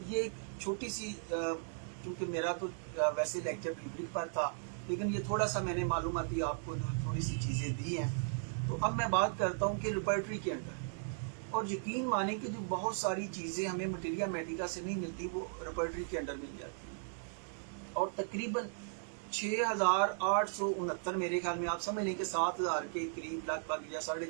یہ ایک چھوٹی سی، کیونکہ میرا تو ویسے لیکچر ریبرک پر تھا لیکن یہ تھوڑا سا میں نے معلوماتی آپ کو تھوڑی سی چیزیں دی ہیں. تو اب میں بات کرتا ہوں کہ ریپرٹری کے اندر، اور یقین مانیں کہ جو بہت ساری چیزیں ہمیں مٹیریا میڈیکا سے نہیں ملتی وہ ریپرٹری کے اندر مل جاتی ہیں. اور تقریباً 6,869 میرے خیال میں آپ سمجھ لیں کہ 7,000 کے قریب، لگ بھگ یا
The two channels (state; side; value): silent; left; digital silence